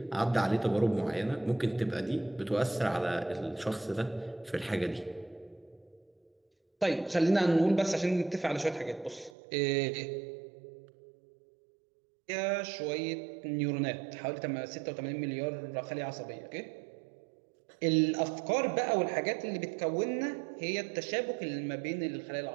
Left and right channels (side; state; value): left; drops out; at 9.3 s